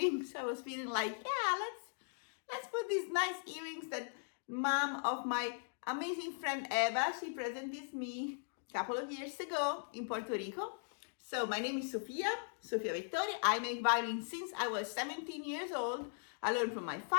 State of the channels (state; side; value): silent; right; digital silence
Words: I was feeling like, yeah, let's put these nice earrings that mom of my amazing friend Eva, she presented me a couple of years ago in Puerto Rico. So my name is Sofia Vettori. I make violin since I was 17 years old. I learned from my